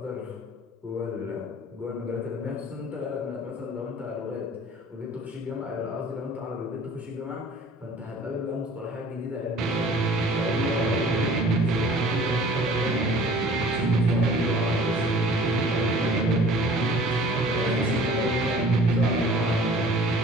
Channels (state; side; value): normal; both; correlation 0.49